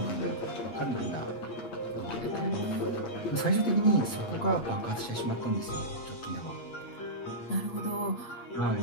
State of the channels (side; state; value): right; late; 7.7 ms